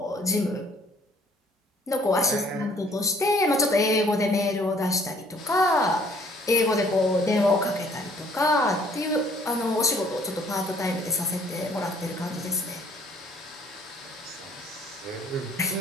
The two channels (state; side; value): normal; both; correlation 0.59